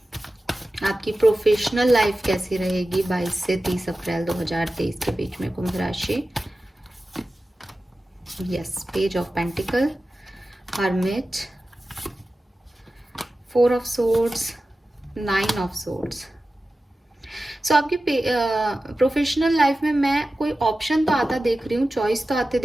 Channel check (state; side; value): normal; both; correlation 0.95